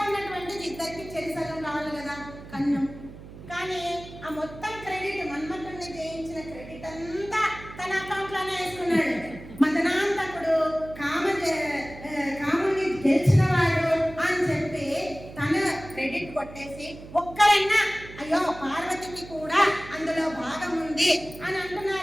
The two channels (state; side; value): noise; right; hum, 15 dB below the sound